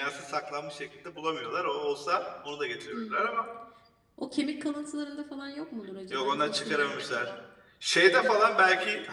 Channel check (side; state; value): both; identical; correlation 1.00